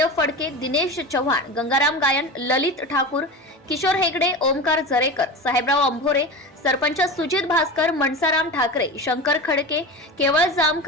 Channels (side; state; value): both; normal; correlation 0.28